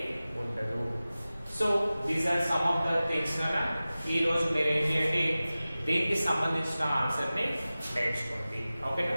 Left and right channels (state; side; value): inverted; both; correlation -0.96